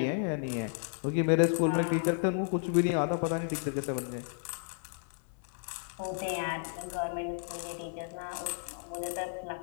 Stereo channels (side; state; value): right; silent; 56 dB below the other